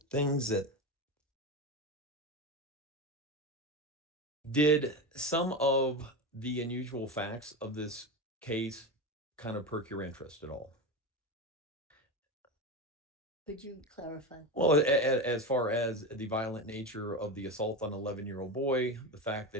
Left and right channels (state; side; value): normal; both; correlation 0.20